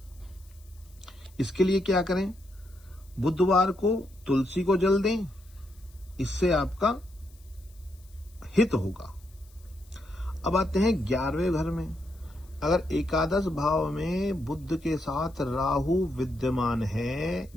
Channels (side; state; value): left; noise; hiss, 29 dB below the sound